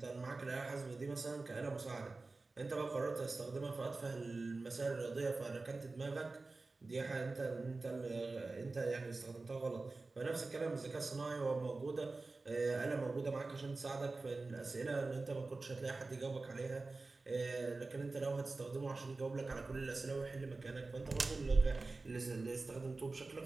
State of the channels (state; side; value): quieter; left; 3.5 dB